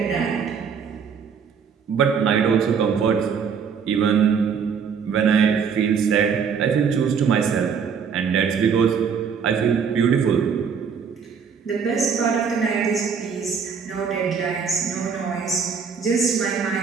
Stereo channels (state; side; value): quieter; left; 6.5 dB